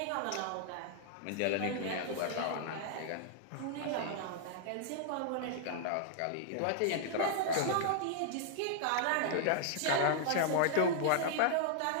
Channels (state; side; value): different; both; correlation -0.01